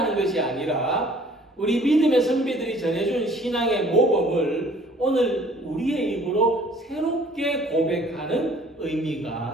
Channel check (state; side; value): normal; both; correlation 0.54